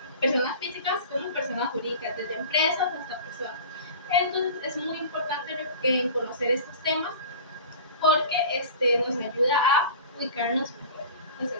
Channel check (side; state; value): both; inverted; correlation -0.38